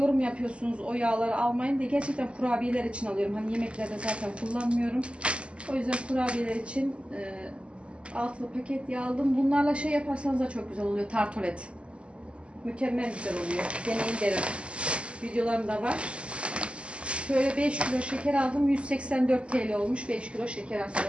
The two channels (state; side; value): late; left; 0.055 ms